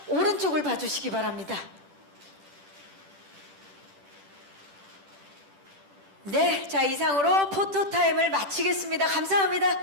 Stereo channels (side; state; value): left; late; 10 ms